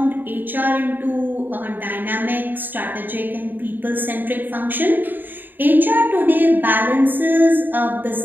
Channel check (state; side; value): late; left; 0.091 ms